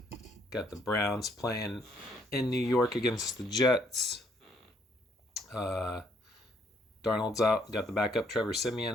Got the Browns playing in New York against the Jets. Darnold's out. Got the backup Trevor Siemian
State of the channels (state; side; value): normal; both; correlation 0.69